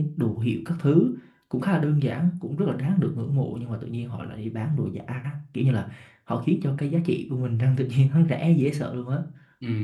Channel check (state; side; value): identical; both; correlation 1.00